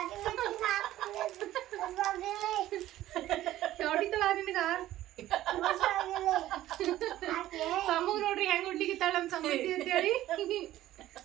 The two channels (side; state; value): left; quieter; 14.3 dB